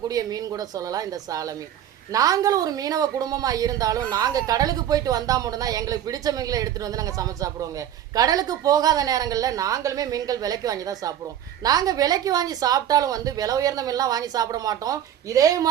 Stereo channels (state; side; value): quieter; left; 10.7 dB